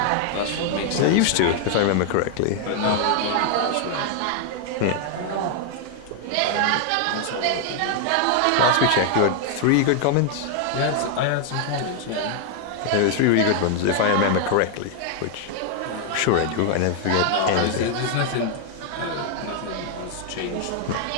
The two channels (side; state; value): both; different; correlation 0.00